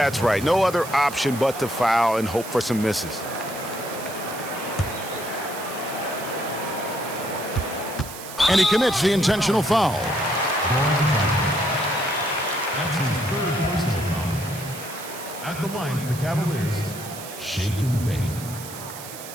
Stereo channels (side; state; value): right; noise; hiss, 13 dB below the sound